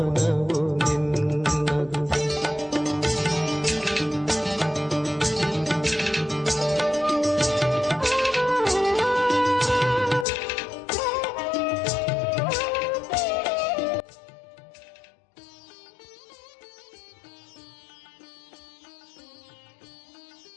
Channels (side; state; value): right; drops out; at 10.2 s